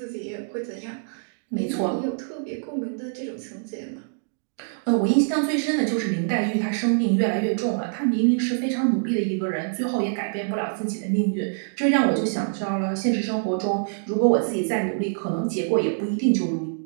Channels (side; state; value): left; silent; digital silence